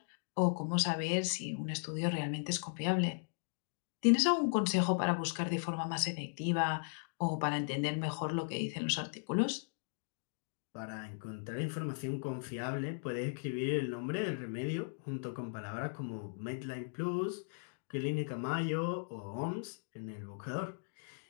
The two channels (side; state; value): right; silent; digital silence